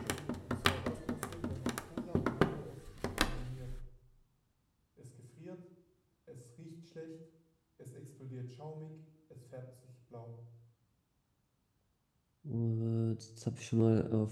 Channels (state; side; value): identical; both; correlation 1.00